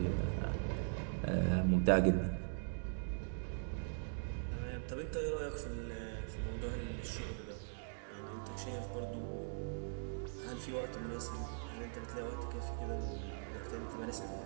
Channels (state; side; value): silent; left; digital silence